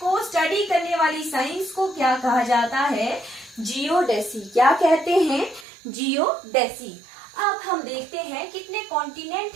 स्टडी करने वाली साइंस को क्या कहा जाता है? जियोडेसी। क्या कहते हैं? जियोडेसी। अब हम देखते हैं कितने कॉन्टिनेंट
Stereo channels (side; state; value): left; drops out; at 5.7 s